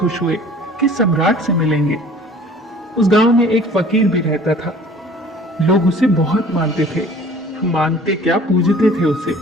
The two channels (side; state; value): both; normal; correlation 0.49